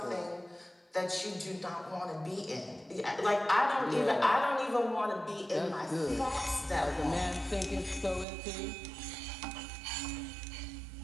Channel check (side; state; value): left; drops out; at 8.2 s